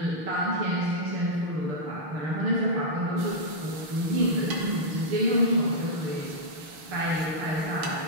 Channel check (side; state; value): left; late; 6.5 ms